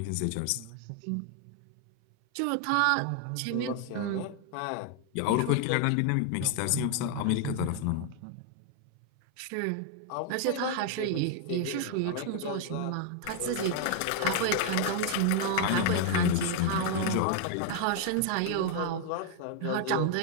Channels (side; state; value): both; different; correlation 0.00